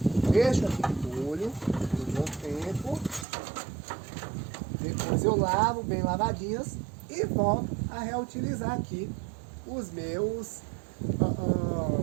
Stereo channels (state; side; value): drops out; left; at 3.2 s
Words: Deixo aqui de molho por um bom tempo. Depois eu lavo bem lavadinhas e volto a reutilizar aqui os meus